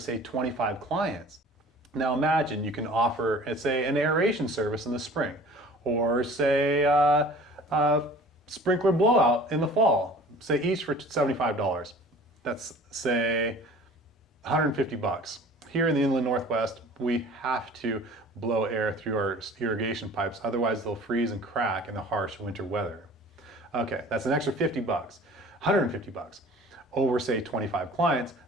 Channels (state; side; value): normal; both; correlation 0.46